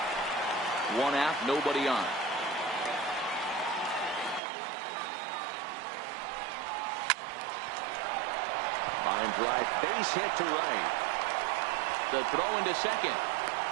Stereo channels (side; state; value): left; drops out; at 4.4 s